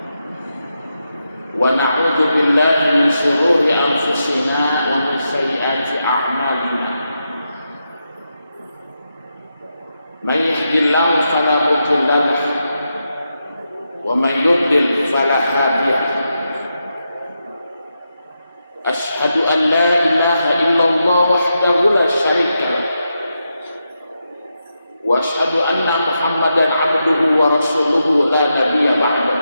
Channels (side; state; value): both; inverted; correlation -0.86